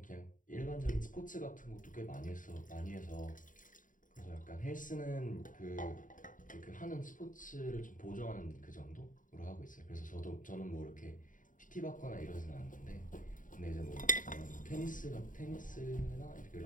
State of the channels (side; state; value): right; late; 0.38 ms